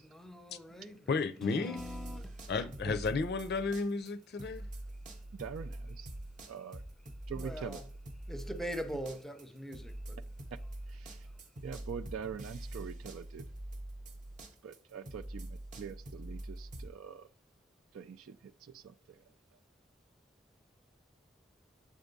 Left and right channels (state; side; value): normal; both; correlation 0.56